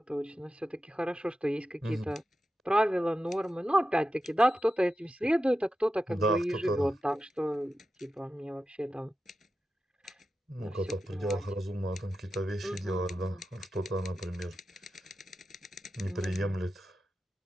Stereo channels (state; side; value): normal; both; correlation 0.91